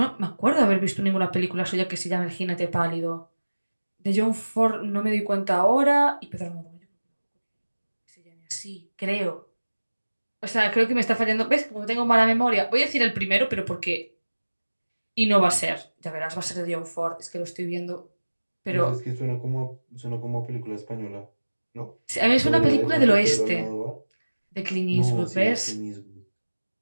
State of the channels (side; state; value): both; inverted; correlation -1.00